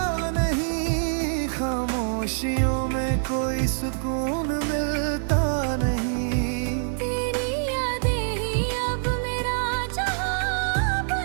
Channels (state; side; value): silent; left; digital silence